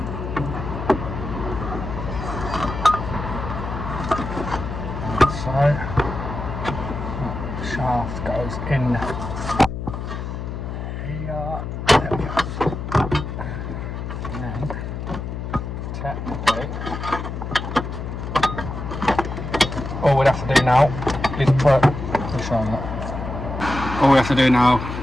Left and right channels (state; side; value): noise; left; hum, 6 dB below the sound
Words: So, shaft goes in here, there we go. And then technically all we'd have to do now